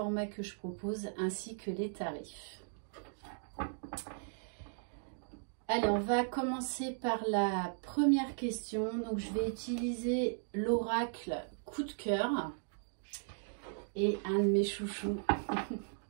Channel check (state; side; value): silent; left; digital silence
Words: que je propose ainsi que les tarifs. Allez, on va commencer par la première question. Donc, je vais utiliser l'oracle coup de cœur et un de mes chouchous,